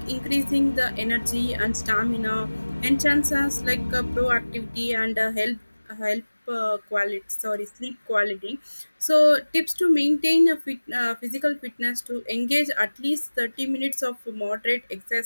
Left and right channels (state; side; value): inverted; both; correlation -1.00